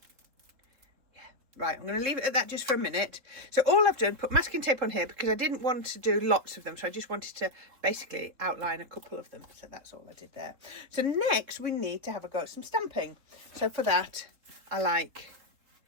Yeah, right, I'm going to leave it at that just for a minute. So all I've done, put masking tape on here because I didn't want to do lots of them, so I just wanted to basically outline a couple of them. So that's all I did there. So next we need to have a go at some stamping. So for that I like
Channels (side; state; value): left; late; 3.8 ms